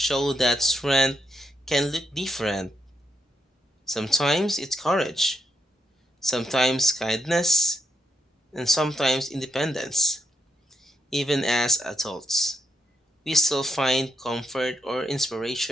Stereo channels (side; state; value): both; normal; correlation 0.81